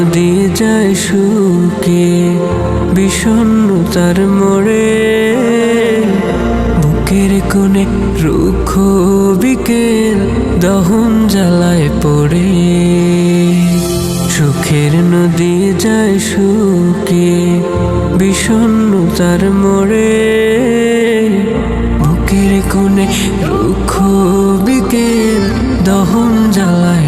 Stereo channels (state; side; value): identical; both; correlation 1.00